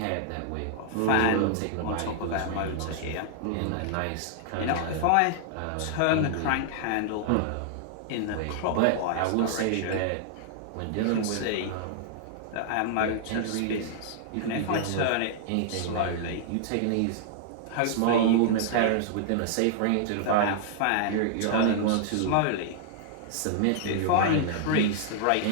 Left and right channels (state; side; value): different; both; correlation -0.01